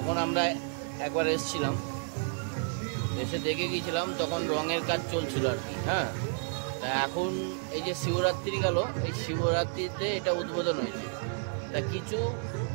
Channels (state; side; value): silent; left; 57 dB below the other